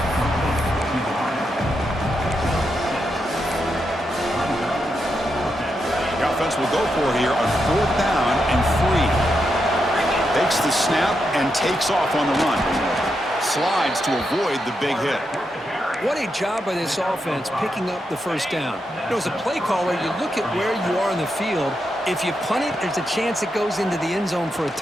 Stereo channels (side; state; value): both; normal; correlation 0.84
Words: The offense will go for here on 4th down and 3. Takes the snap and takes off on the run. Slides to avoid the big hit. What a job by this offense picking up the first down. You know, as a play caller, you look at where you are in the field. If you punt it, there's a chance it goes into the end zone for a